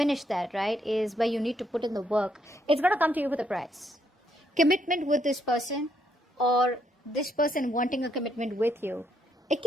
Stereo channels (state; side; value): normal; both; correlation 0.74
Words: that, right, is where you need to put in the work. It's going to come to you with a price. Commitment with this person, or this person wanting a commitment with you, it